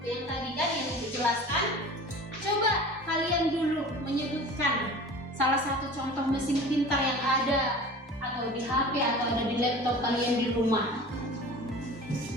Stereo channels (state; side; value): normal; both; correlation 0.39